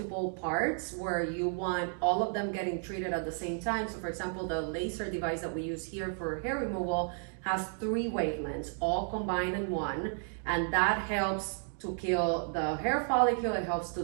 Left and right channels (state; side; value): silent; left; 56 dB below the other